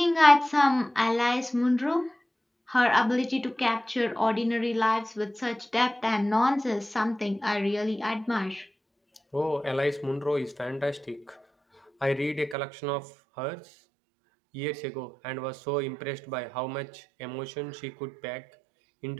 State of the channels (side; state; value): left; drops out; at 12.6 s